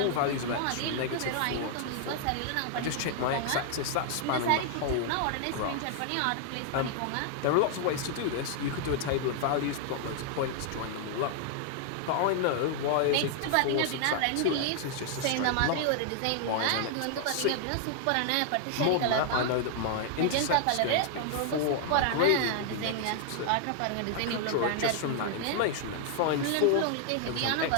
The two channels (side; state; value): both; different; correlation 0.00